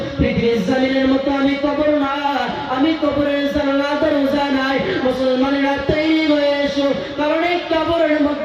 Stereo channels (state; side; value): identical; both; correlation 1.00